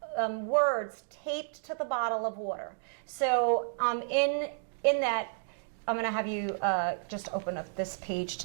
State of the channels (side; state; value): left; silent; digital silence